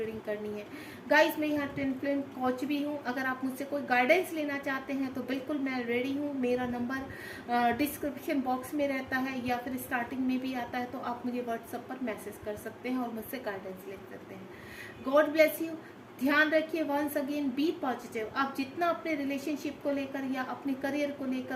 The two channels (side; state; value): both; identical; correlation 1.00